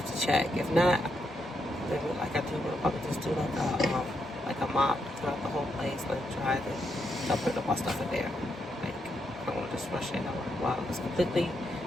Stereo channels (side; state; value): both; normal; correlation 0.80